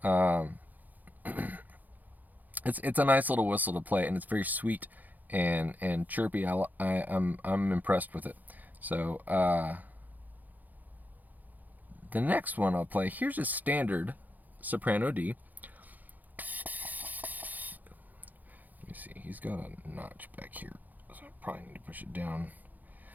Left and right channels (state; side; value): late; left; 0.083 ms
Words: Um, it's a nice little whistle to play, and it's very sweet and chirpy. I'm impressed with it. So the next one I'll play. Here's a standard soprano D. Let me see. He's got a notch back here, so I probably need to push it down